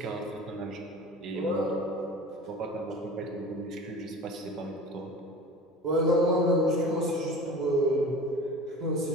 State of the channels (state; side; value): normal; both; correlation 0.38